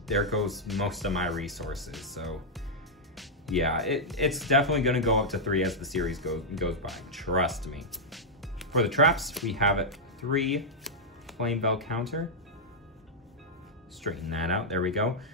there goes most of my resources. So yeah, it's definitely going to go up to 3 as the series goes by, trust me. For the traps, we have 3 Flame Bell Counter. Straighten that out, there we go.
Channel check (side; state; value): both; normal; correlation -0.06